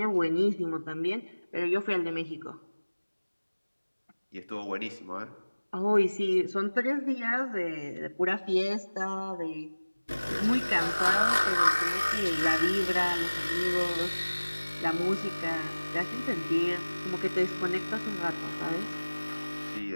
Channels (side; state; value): both; inverted; correlation -1.00